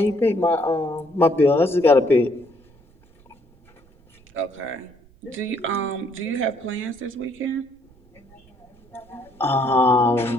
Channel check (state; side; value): noise; right; rumble, 29 dB below the sound